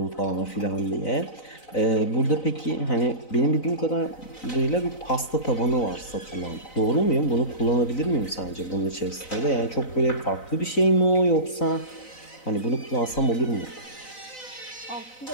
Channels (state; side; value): late; right; 4.0 ms